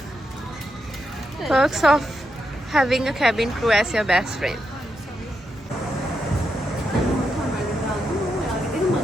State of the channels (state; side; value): normal; both; correlation 0.83